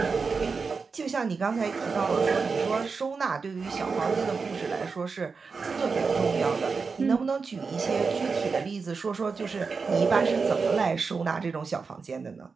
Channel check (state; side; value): quieter; left; 4.9 dB